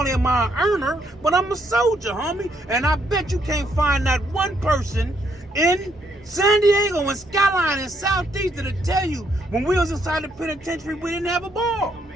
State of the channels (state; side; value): normal; both; correlation 0.73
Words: am I an earner, but I'm a soldier, homie. And I bet you can't find that one person in San Diego and Skyline and Southeast that'll tell you when we was inside the penitentiary, we didn't have a ball.